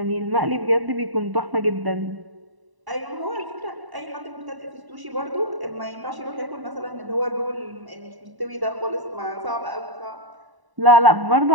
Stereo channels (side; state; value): left; late; 1.0 ms